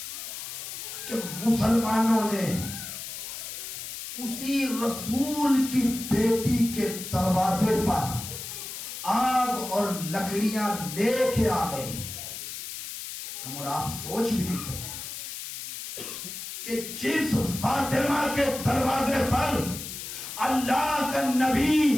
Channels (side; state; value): left; noise; hiss, 8 dB below the sound